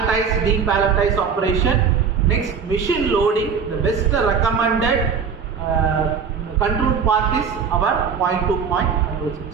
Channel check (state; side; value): quieter; left; 6.3 dB